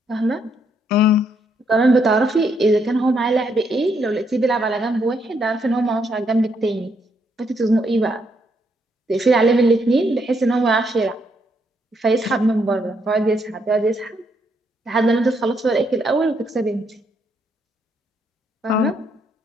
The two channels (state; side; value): normal; both; correlation 0.75